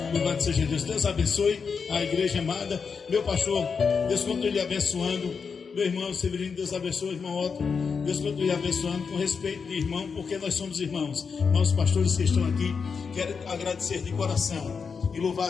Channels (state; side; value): quieter; right; 5.7 dB